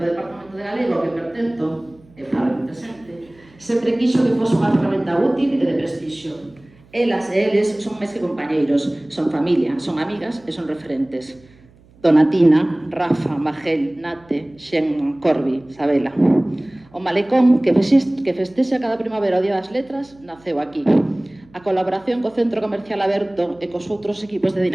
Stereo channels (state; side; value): noise; right; hum, 28 dB below the sound